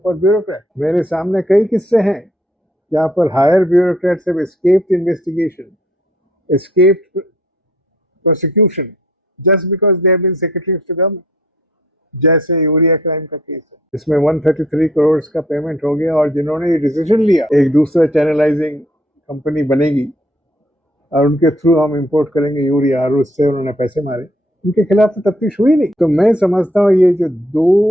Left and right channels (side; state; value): both; normal; correlation 0.62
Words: for bureaucrat. मेरे सामने कई किस्से हैं जहाँ पर higher bureaucrats have escaped investigation, escaped prosecution just because they have been secretaries to government. जैसे यूरिया क्राइम का केस है, इसमें 133 करोड़ का पेमेंट हो गया और जिन्होंने ये डिसीजन लिया एक दूसरा चैनलाइजिंग कंपनी बनेगी और उनके थ्रू हम इंपोर्ट करेंगे यूरिया और उससे उन्होंने पैसे मारे, उनके खिलाफ तो तफ्तीश हुई नहीं। तो मैं समझता हूँ ये जो